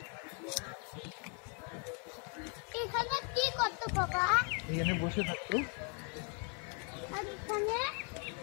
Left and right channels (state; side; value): quieter; right; 38.5 dB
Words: এখানে কি করতে বাবা? এখানে বসে থাকতো, আর এখানে